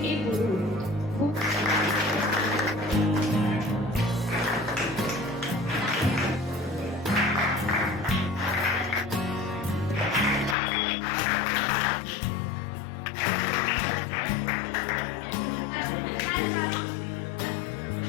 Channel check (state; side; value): drops out; right; at 10.6 s